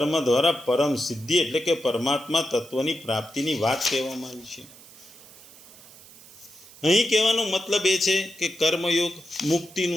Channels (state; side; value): noise; right; hiss, 21 dB below the sound